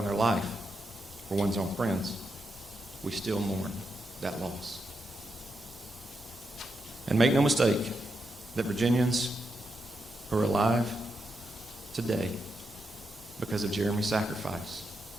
their life for one's own friends, we still mourn that loss. And make no mistake that Virginians who are alive today because of Jeremy's sacrifice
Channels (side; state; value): both; normal; correlation 0.85